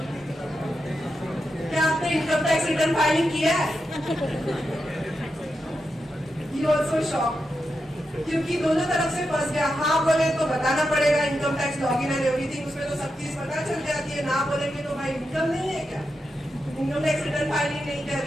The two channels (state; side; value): normal; both; correlation 0.87